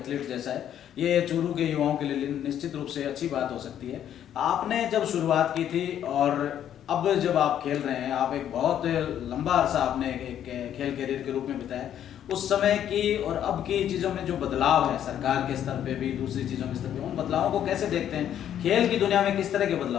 जैसा है। ये चूरू के युवाओं के लिए निश्चित रूप से अच्छी बात हो सकती है। आपने जब शुरुआत की थी और अब जब आप खेल रहे हैं, आप एक बहुत लंबा अरसा आपने एक खेल कैरियर के रूप में बिताया, उस समय की और अब की चीज़ों में जो बदलाव है सरकार के स्तर पे भी, दूसरी चीज़ों के स्तर पे, उन बदलावों को कैसे देखते हैं? खेल की दुनिया में किस तरह के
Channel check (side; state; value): right; quieter; 10.3 dB